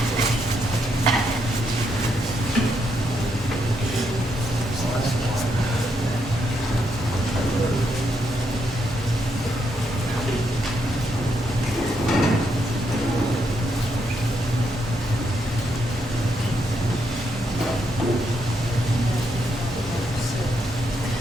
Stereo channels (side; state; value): both; normal; correlation 0.78